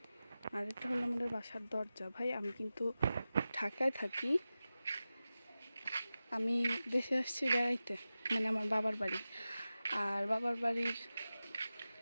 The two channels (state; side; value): inverted; both; correlation -0.95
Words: আর এটা হলো আমাদের বাসার দরজা। ভাই আমি কিন্তু ঢাকায় থাকি, আমি দেশে আসছি বেড়াইতে, মানে আমার বাবার বাড়ি। আর বাবার বাড়ির